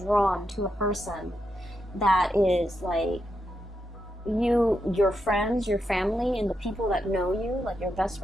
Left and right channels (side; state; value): both; normal; correlation 0.84